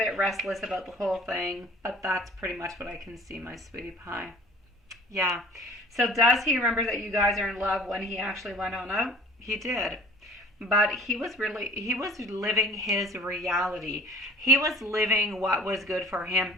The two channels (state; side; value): normal; both; correlation 0.48